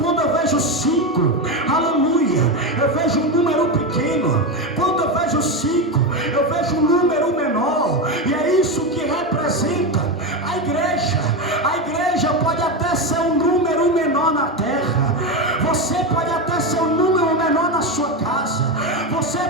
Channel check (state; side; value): normal; both; correlation 0.14